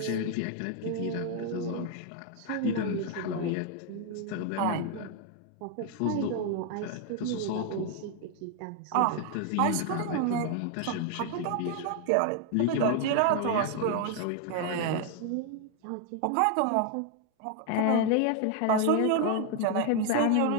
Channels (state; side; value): different; both; correlation 0.00